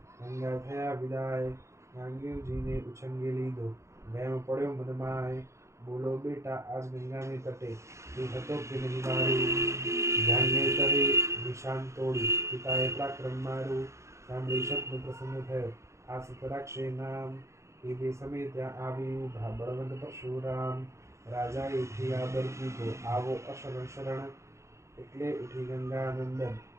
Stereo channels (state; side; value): late; left; 0.14 ms